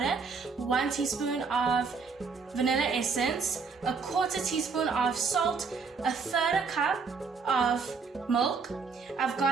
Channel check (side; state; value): left; quieter; 5.0 dB